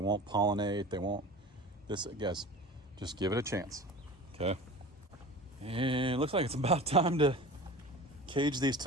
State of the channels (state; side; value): normal; both; correlation 0.37